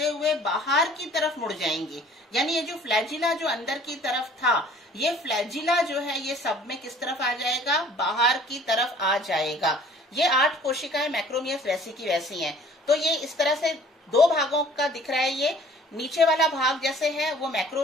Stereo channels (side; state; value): both; normal; correlation 0.52